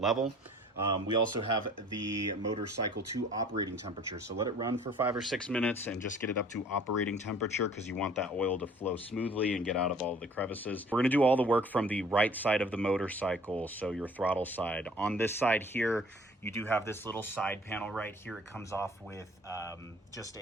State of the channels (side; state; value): both; normal; correlation 0.52